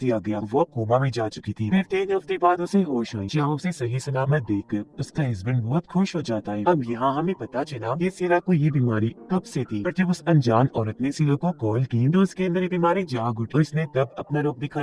गया। वो कोमा में जा चुकी थी। फिर 3 हफ्ते बाद उसे होश आई, जहाँ उसे सही सलामत देखकर उसका हस्बैंड बहुत खुश हो जाता है। अब यहाँ हमें पता चला कि सीरा को ये बीमारी कब से थी, पर जब उस अनजान औरत ने सीरा को कॉल की तो उसके अंदर ये बीमारी जाग उठी। उसने तब अपना रूप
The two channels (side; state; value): both; identical; correlation 1.00